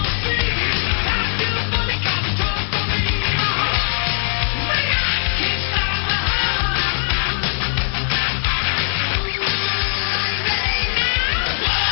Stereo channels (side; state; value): right; silent; digital silence